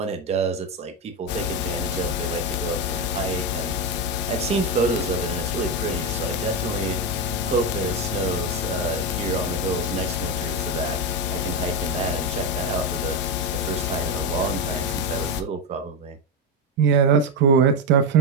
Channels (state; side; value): normal; both; correlation 0.10